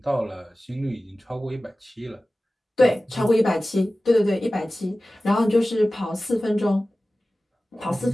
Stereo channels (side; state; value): both; normal; correlation 0.96